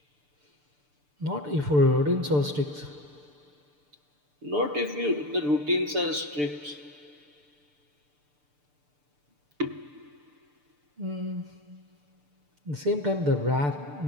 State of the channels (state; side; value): late; left; 6.8 ms